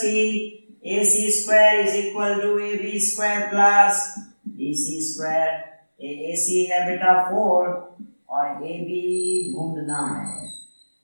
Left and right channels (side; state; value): both; inverted; correlation -1.00